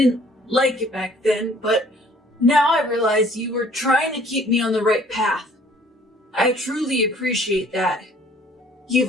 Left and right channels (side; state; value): both; normal; correlation 0.57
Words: like it back then, but now I realize you were trying to keep me on the right path. I truly appreciate that.